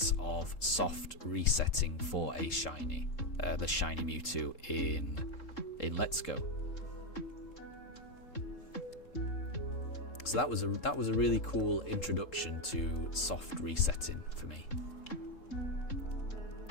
of soft resetting for a shiny, the Shiny Mewtwo in Let's Go. So that was a really cool introduction to soft resetting for me.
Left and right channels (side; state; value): right; late; 3.7 ms